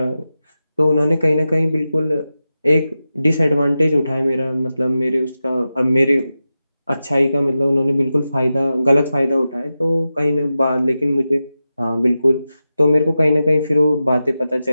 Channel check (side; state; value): both; inverted; correlation -0.92